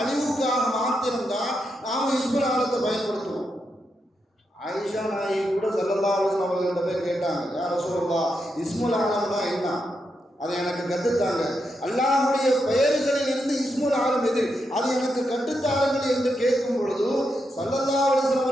மாத்திரம்தான் நாம் இஸ்முல் ஆலத்தை பயன்படுத்துவோம். ஆயிஷா நாயகி கூட ஸல்லல்லாஹு அலைஹி வஸல்லம் அவர்கள்ட்ட போய் கேட்டாங்க, யா ரசூலுல்லாஹ் இஸ்முல் ஆலம்னா என்ன, அதை எனக்கு கற்றுத்தாங்க, அல்லாஹ்வுடைய பெயர்களில் இருந்து இஸ்முல் ஆலம் எது, அது எனக்கு கற்றுத்தாருங்கள் என்று கேட்கும் பொழுது ஸல்லல்லாஹு அலைஹி வஸல்லம்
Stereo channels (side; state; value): both; normal; correlation 0.84